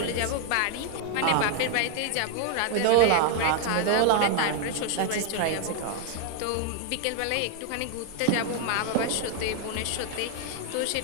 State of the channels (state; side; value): different; both; correlation 0.00